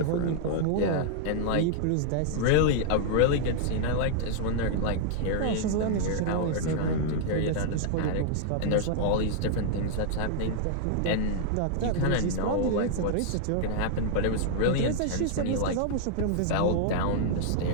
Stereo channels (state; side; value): different; both; correlation -0.01